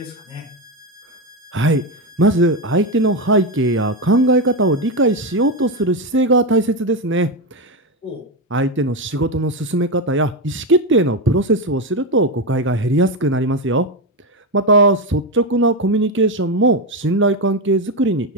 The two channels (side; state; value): both; normal; correlation 0.11